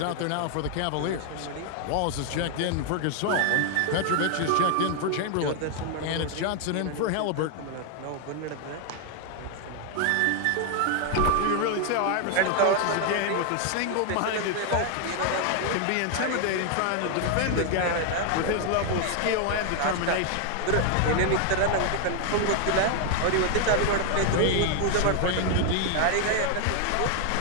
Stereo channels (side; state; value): both; different; correlation 0.00